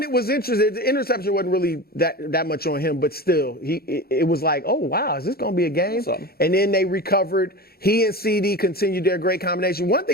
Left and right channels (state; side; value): late; right; 0.45 ms